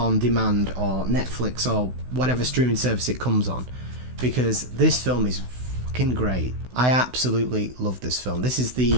demand or Netflix or whatever streaming service it comes on, because this film is fucking great. I absolutely love this film. This is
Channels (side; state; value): left; late; 16 ms